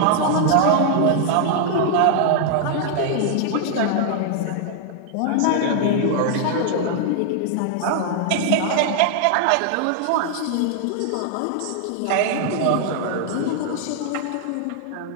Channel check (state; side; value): different; both; correlation 0.00